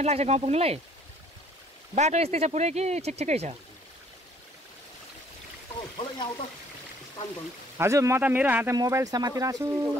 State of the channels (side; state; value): both; normal; correlation 0.60